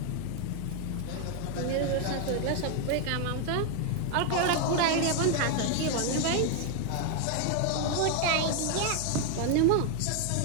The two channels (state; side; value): different; both; correlation 0.01